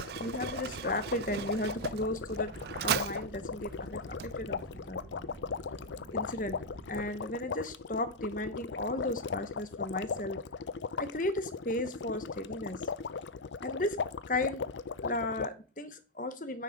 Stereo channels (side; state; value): both; normal; correlation -0.01